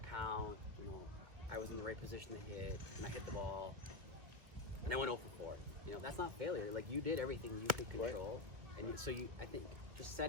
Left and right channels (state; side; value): late; left; 2.0 ms